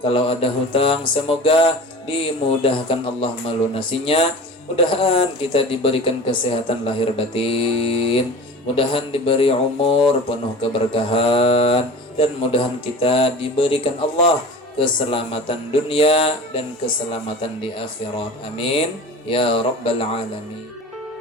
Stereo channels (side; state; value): both; normal; correlation 0.36